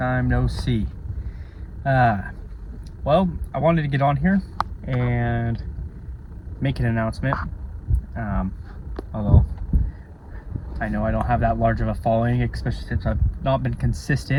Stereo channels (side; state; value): both; identical; correlation 1.00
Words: no see. Well, I wanted to get on here and make an announcement. Although I know I don't have that large of a following, especially since I've not been